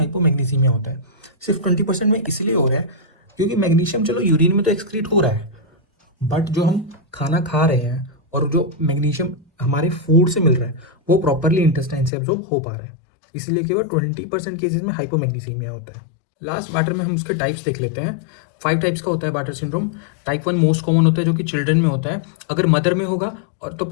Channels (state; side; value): drops out; right; at 12.1 s